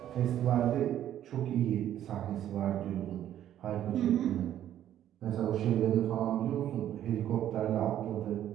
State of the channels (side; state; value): left; quieter; 11.4 dB